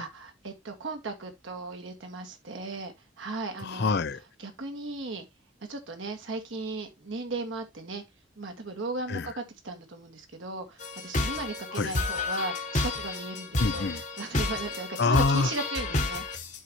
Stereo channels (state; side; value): normal; both; correlation 0.34